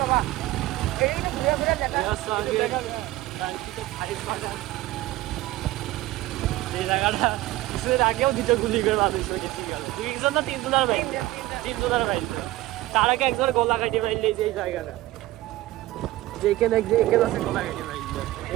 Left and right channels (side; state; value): left; quieter; 16.9 dB